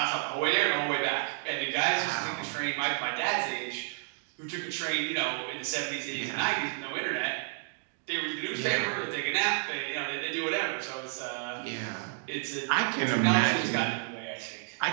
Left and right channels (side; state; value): left; silent; 57 dB below the other